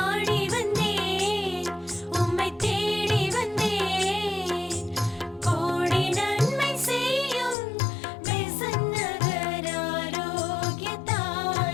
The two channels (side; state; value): right; drops out; at 7.6 s